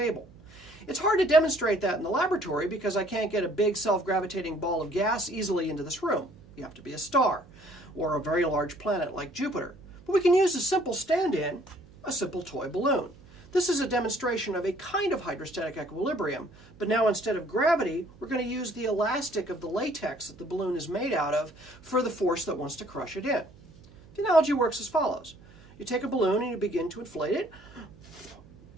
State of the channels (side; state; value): right; noise; hum, 24 dB below the sound